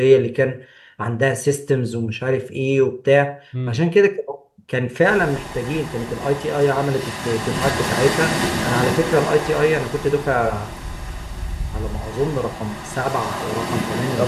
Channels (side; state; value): both; identical; correlation 1.00